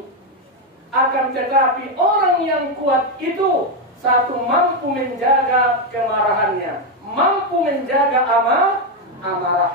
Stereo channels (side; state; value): both; normal; correlation 0.05